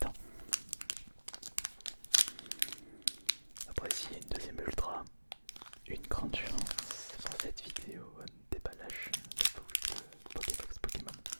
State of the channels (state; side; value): inverted; both; correlation -1.00